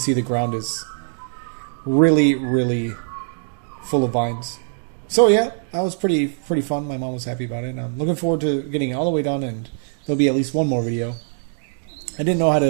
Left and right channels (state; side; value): silent; left; 59 dB below the other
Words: the ground is really, really full of vines. So yeah, that was pretty fun. My mom was happy about it. And I'm looking forward to getting it all the way done, and there'll be at least one more video. I didn't know I